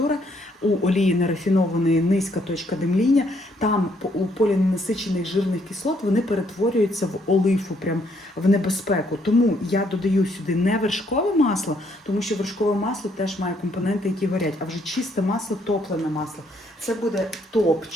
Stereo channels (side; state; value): both; normal; correlation 0.70